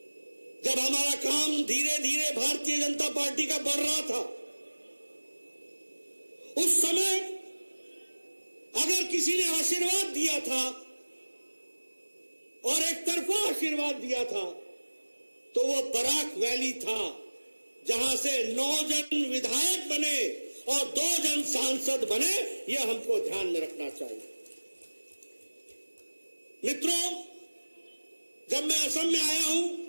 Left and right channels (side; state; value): both; inverted; correlation -1.00